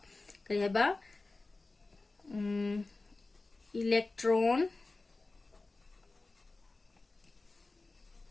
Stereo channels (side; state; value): right; quieter; 3.4 dB